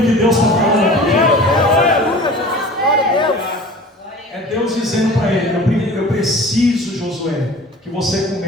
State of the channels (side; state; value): both; normal; correlation 0.41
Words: que Deus está falando aqui? É Deus dizendo para ele: eu preciso, Josué, que você